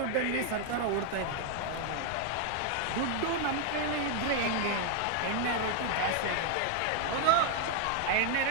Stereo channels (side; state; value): both; different; correlation 0.00